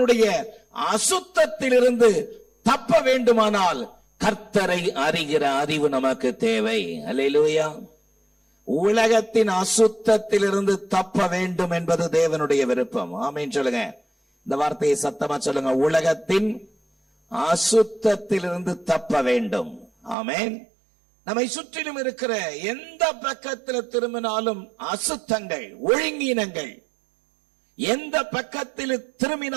அசுத்தத்திலிருந்து தப்ப வேண்டுமானால் கர்த்தரை அறிகிற அறிவு நமக்கு தேவை. அல்லேலூயா. உலகத்தின் அசுத்தத்திலிருந்து தப்ப வேண்டும் என்பது தேவனுடைய விருப்பம். ஆமென் சொல்லுங்க. இந்த வார்த்தையை சத்தமா சொல்லுங்க. உலகத்தின் அசுத்தத்திலிருந்து தப்ப வேண்டும். ஆமென். நம்மை சுற்றிலும் இருக்கிற எந்த பக்கத்தில் திரும்பினாலும் அசுத்தங்கள், ஒழுங்கீனங்கள், எந்த பக்கத்தில்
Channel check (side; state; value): left; drops out; at 20.2 s